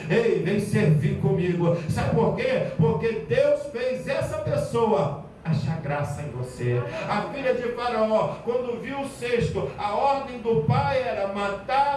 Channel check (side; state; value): both; identical; correlation 1.00